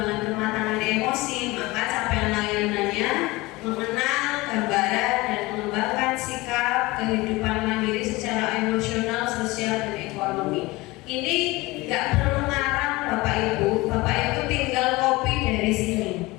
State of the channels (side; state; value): right; quieter; 21.6 dB